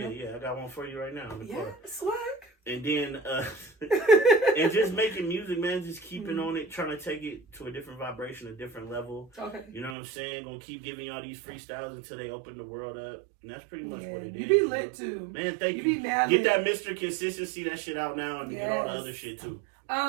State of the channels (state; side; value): drops out; left; at 10.0 s